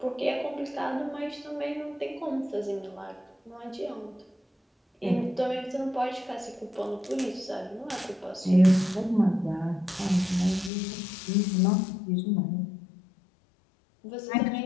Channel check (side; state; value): right; drops out; at 10.7 s